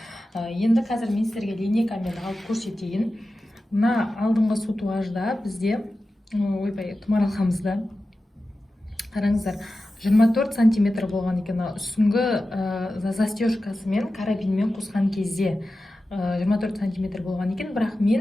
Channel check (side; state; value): both; normal; correlation 0.94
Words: Енді қазір мен сіздерге линейкамен алып көрсетейін. Мына алдыңғы сутуажда бізде томаралқамызда қараңыздар 24 сантиметр болған екен. Үстіңгі застежкасымен карабинмен қосқан кезде 24 сантиметр болған екен. Бірақ